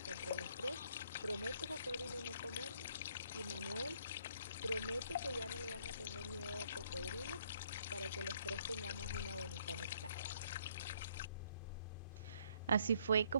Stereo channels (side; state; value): both; inverted; correlation -0.66